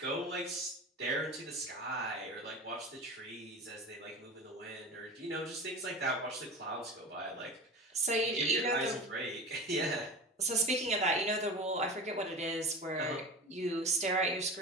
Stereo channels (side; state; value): both; normal; correlation 0.32